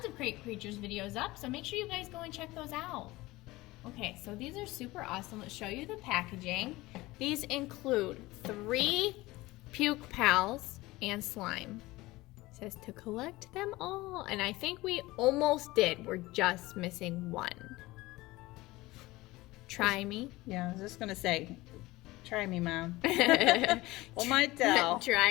of Crate Creatures videos up, so make sure you guys go and check those out. Okay, so these are super awesome. Let's show you the packaging. These include 3 Puke Pals and slime. It says to collect them all, and I think we almost did. We're just missing one. Try me. Yeah, I was just gonna say, try me, Mom. Pull my tail.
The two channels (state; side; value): quieter; right; 19.7 dB